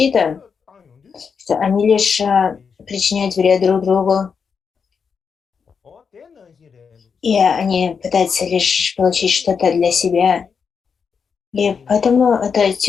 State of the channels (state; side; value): quieter; right; 6.1 dB